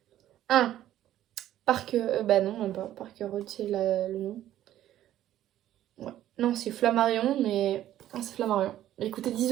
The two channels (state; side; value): quieter; left; 12.7 dB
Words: Ah, bah non, même pas. Parker Road, c'est le nom. Ouais. Non, c'est Flammarion, mais. Ah, c'est Flammarion. Il coûtait